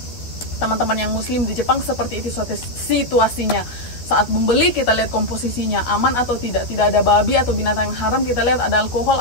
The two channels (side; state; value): right; late; 12 ms